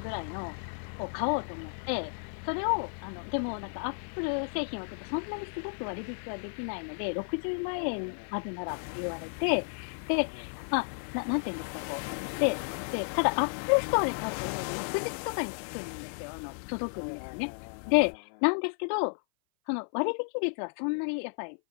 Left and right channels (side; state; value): right; silent; 56 dB below the other